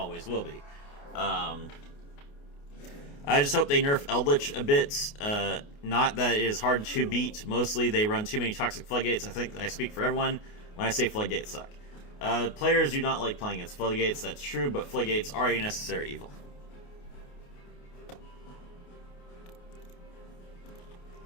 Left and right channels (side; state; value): right; late; 28 ms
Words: will be. I just hope they nerf Eldlich a bit. Not that it is hard to beat. Mostly they run too many Toxic Floodgates. I think I speak for everyone when I say Floodgates suck. Players do not like playing against Floodgates, that's true, but Floodgates are a necessary evil.